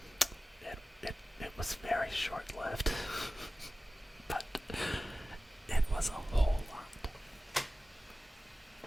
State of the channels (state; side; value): normal; both; correlation 0.96